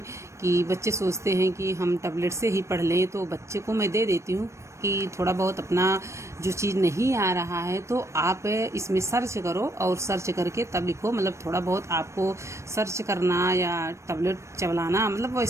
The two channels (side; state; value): left; late; 0.14 ms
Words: कि बच्चे सोचते हैं कि हम टैबलेट से ही पढ़ लें, तो बच्चे को मैं दे देती हूँ कि थोड़ा बहुत अपना जो चीज़ नहीं आ रहा है तो आप इसमें सर्च करो और सर्च करके तब लिखो। मतलब थोड़ा बहुत आपको सर्च करना या टैबलेट चलाना, मतलब